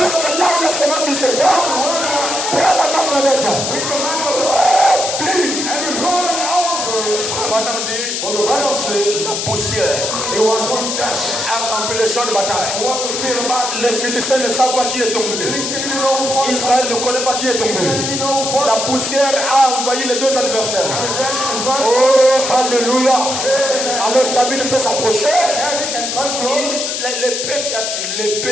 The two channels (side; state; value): left; noise; hiss, 2 dB below the sound